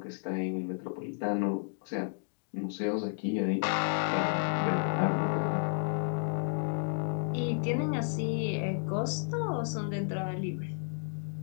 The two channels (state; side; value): silent; right; digital silence